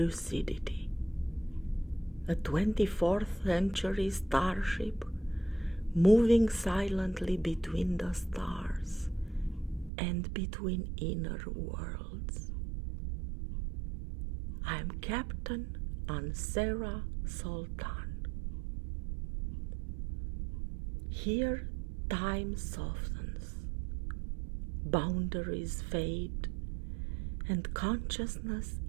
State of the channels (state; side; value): drops out; left; at 9.9 s